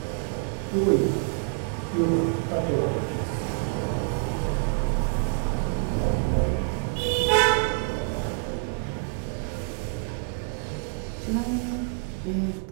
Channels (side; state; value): left; silent; digital silence